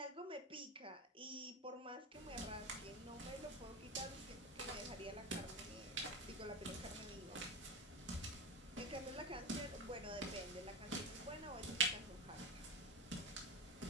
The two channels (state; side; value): normal; both; correlation 0.21